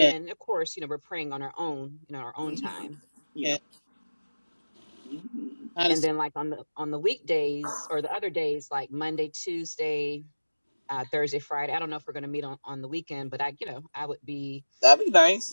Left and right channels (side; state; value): both; inverted; correlation -1.00